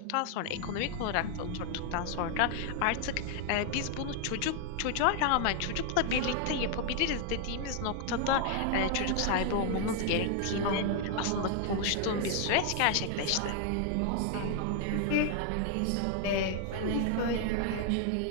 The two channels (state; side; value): different; both; correlation 0.00